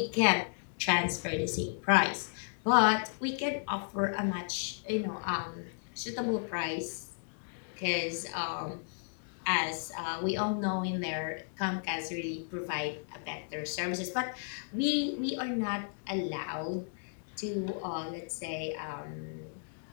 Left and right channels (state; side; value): silent; right; digital silence